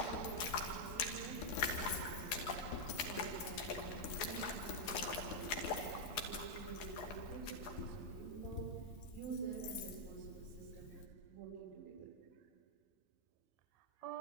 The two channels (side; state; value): right; late; 12 ms